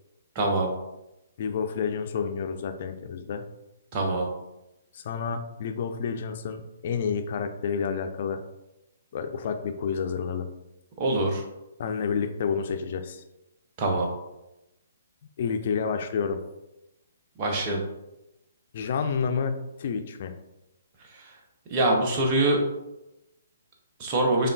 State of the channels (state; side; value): inverted; both; correlation -0.55